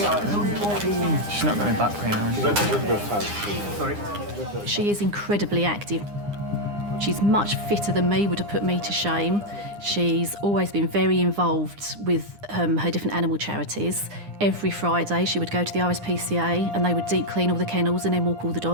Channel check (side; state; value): left; late; 9.8 ms